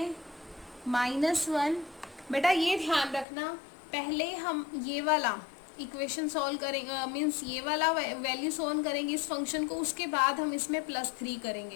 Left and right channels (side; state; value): right; drops out; at 3.2 s